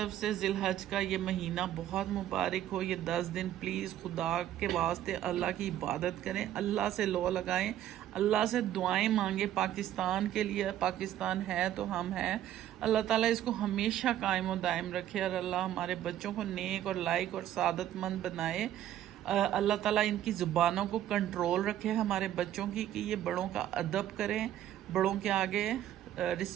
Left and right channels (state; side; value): quieter; left; 12.0 dB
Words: سے ذی الحج کا یہ مہینہ بہت مبارک ہو. یہ 10 دن پلیز خدا کے واسطے اللہ کی عبادت کریں، اللہ سے لو لگائیں، اللہ سے دعائیں مانگیں پاکستان کے لیے. پاکستان ہے تو ہم ہیں. اللہ تعالیٰ اس کو ہمیشہ قائم و دائم رکھے، اور اللہ ہمارے بچوں کو نیک اور لائق اور سعادت مند بنائے. اللہ تعالیٰ ان کی زبانوں کو کنٹرول رکھے ہمارے بچوں کی، کہ یہ بڑوں کا ادب کریں، بڑوں کے آگے